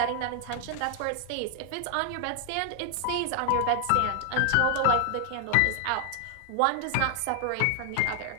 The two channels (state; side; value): different; both; correlation 0.00